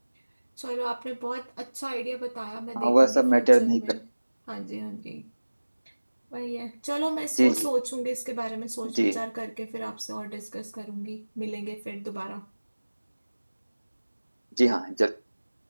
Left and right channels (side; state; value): both; inverted; correlation -1.00